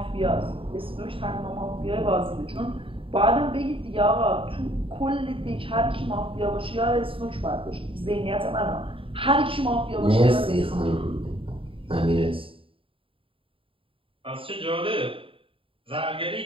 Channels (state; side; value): late; left; 0.26 ms